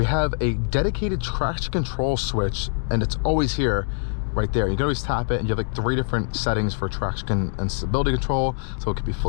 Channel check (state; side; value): silent; right; 63 dB below the other